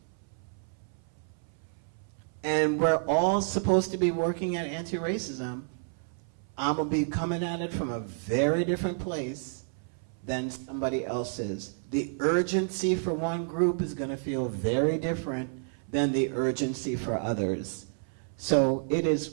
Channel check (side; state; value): left; silent; 58 dB below the other